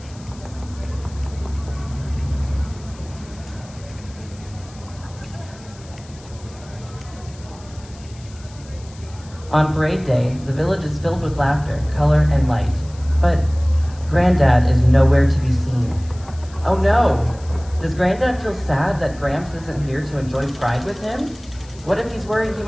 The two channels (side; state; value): left; noise; hiss, 23 dB below the sound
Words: On parade day, the village is filled with laughter, color, and light. But Granddad is nowhere to be seen. Oh no! Does Granddad feel sad that Gramps isn't here to enjoy Pride with him? What if he's worried he